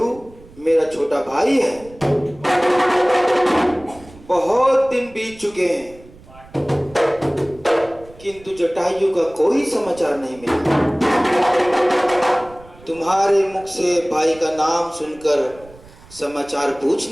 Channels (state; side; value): noise; right; rumble, 23 dB below the sound